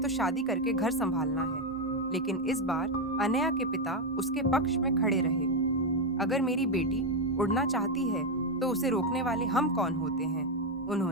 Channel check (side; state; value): both; normal; correlation 0.06